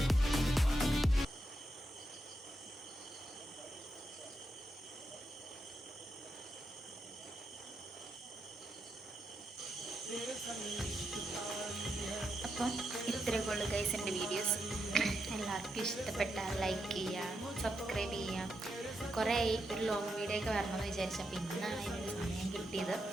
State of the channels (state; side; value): normal; both; correlation 0.84